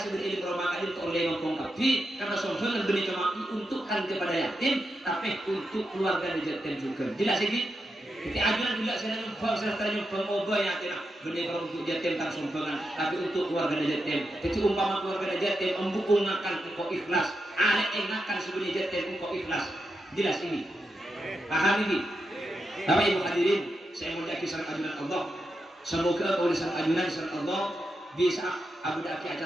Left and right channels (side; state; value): both; normal; correlation 0.86